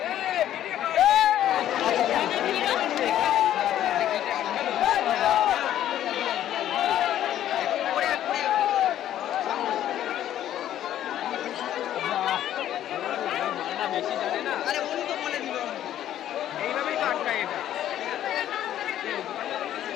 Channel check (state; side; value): quieter; right; 11.7 dB